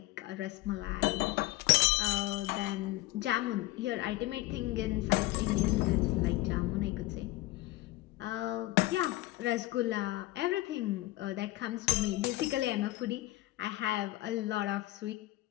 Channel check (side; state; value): right; quieter; 18.3 dB